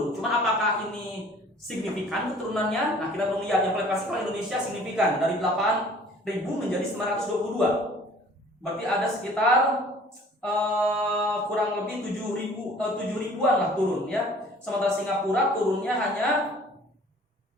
Cuman apakah ini signifikan turunannya? Nah, kita belum lihat. Yang paling pasti kalau Indonesia signifikan dari 8.000 menjadi 922. Berarti ada sekitar kurang lebih 7.000-an lah turun ya. Sementara Singapura turunnya hanya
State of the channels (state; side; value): normal; both; correlation 0.51